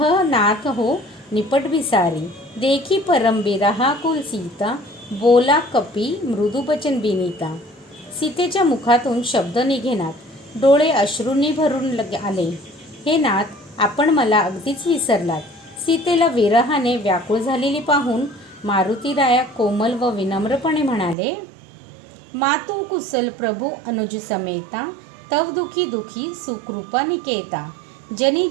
नाथ हो निपट विसारी. देखी परम बिरहा कुल सीता, बोला कपी मृदू बचन बिनीता. सीतेच्या मुखातून शब्द निघेनात, डोळे अश्रूंनी भरून आले. हे नाथ, आपण मला अगदीच विसरलात. सीतेला विरहाने व्याकुळ झालेली पाहून मारुतीराया कोमल व विनम्रपणे म्हणाले, मातू कुशल प्रभू अनुज समेता, तव दुखी दुखी सुकृपा निकेता. जनी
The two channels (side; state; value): left; drops out; at 21.2 s